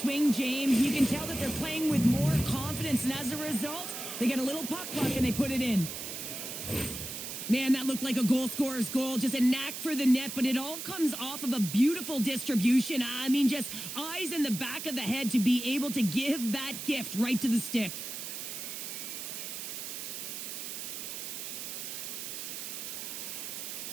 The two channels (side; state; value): right; noise; hiss, 7 dB below the sound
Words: James. You can tell that they're playing with more confidence, and as a result, they get a little puck luck and they put it in. Man, that looked like a goal scorer's goal. Just a knack for the net, but it all comes off of a beautiful distribution. I mean, just eyes in the back of the head to be able to give that gift right to the stick.